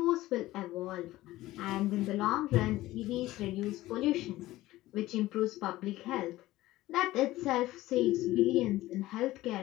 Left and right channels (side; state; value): right; quieter; 16.8 dB